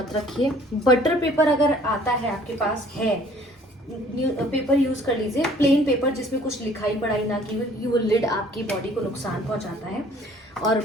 रखिए। बटर पेपर अगर आता है आपके पास है, पेपर यूज कर लीजिए, प्लेन पेपर जिसमें कुछ लिखाई पढ़ाई ना की हुई, वो लिड आपकी बॉडी को नुकसान पहुंचाता है। और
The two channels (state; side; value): normal; both; correlation 0.55